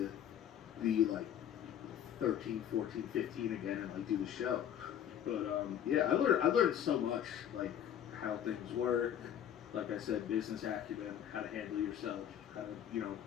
be like 13, 14, 15 again and like do the show. But yeah, I learned so much, like how things work. Like I said, business acumen, how to handle yourself, how to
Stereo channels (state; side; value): quieter; right; 9.8 dB